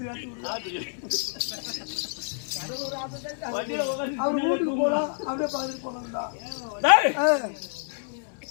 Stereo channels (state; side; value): silent; right; digital silence